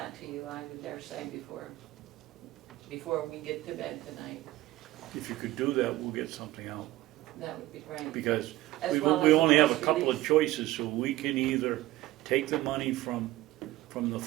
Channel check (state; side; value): quieter; left; 16.9 dB